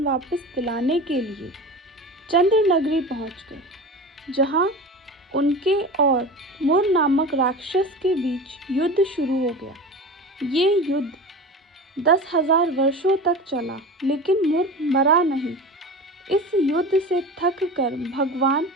वापस दिलाने के लिए चंद्र नगरी पहुँच गए, जहाँ उनके और मुर नामक राक्षस के बीच युद्ध शुरू हो गया। ये युद्ध 10,000 वर्षों तक चला, लेकिन मुर मरा नहीं। इस युद्ध से थक कर भगवान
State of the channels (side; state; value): both; normal; correlation 0.32